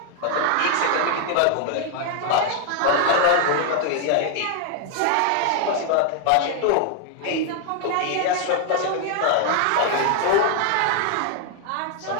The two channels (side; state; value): both; different; correlation 0.00